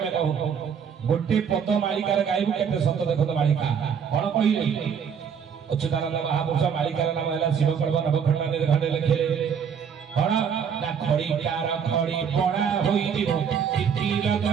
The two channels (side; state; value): left; quieter; 7.2 dB